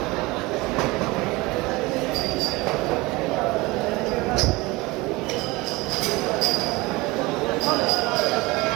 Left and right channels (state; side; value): quieter; left; 22.5 dB